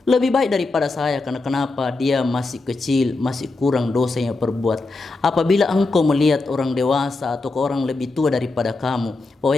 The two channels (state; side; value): quieter; right; 3.4 dB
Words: lebih baik daripada saya. Karena kenapa? Dia masih kecil, masih kurang dosa yang perbuat. Apabila engkau melihat orang dewasa atau orang lebih tua daripada kamu, bahwa